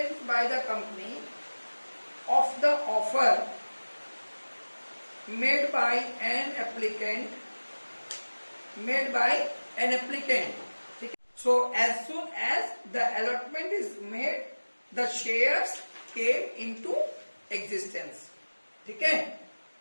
by the company of the offer made by an applicant. So as soon as the allotment is made, the shares came into existence. ठीक है?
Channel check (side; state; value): both; inverted; correlation -1.00